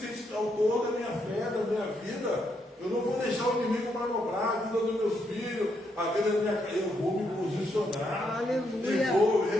autor da minha fé, da minha vida. Eu não vou deixar o inimigo manobrar a vida dos meus filhos, a vida da minha casa. Eu vou me posicionar. Aleluia. E vou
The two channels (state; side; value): normal; both; correlation 0.78